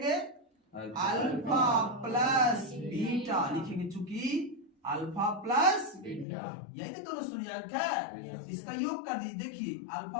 अल्फा प्लस बीटा लिखेंगे, चूंकि अल्फा प्लस बीटा यही तो दोनों शून्यांक है। इसका योग कर दीजिए, देखिए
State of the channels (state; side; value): drops out; right; at 6.2 s